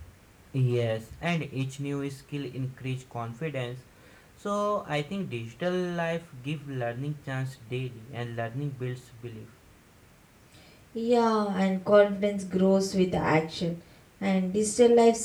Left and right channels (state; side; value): identical; both; correlation 1.00